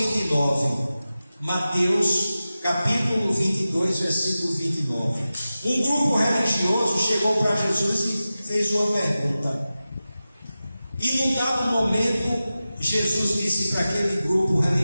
Mateus capítulo 22, versículo 29. Um grupo religioso chegou para Jesus e fez uma pergunta. E num dado momento, Jesus disse para aquele grupo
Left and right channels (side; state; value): both; inverted; correlation -0.94